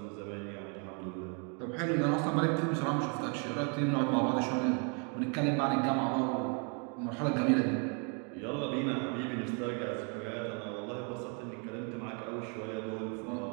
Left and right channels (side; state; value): left; quieter; 37.8 dB